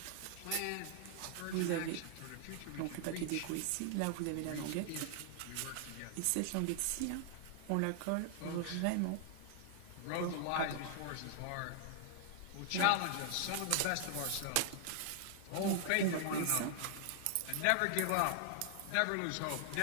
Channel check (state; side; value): different; both; correlation 0.00